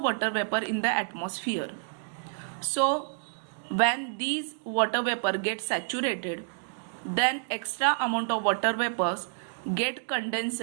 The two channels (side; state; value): left; silent; digital silence